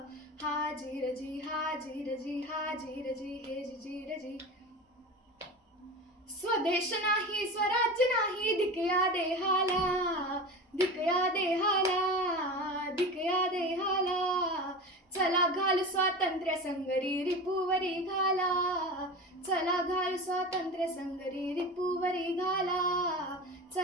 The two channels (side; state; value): both; normal; correlation 0.29